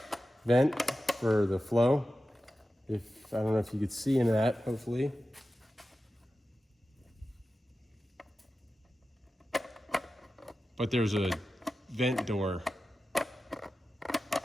vent for the flow. I don't know if you could see into that, hopefully. But there's a vent door,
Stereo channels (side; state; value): both; normal; correlation 0.93